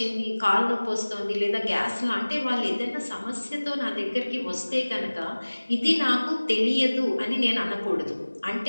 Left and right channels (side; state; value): both; inverted; correlation -1.00